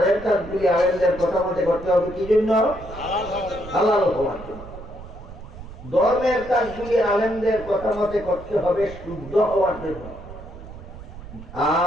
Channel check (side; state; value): right; noise; rumble, 14 dB below the sound